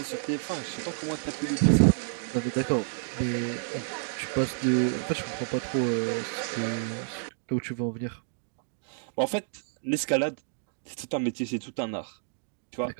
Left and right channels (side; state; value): left; silent; digital silence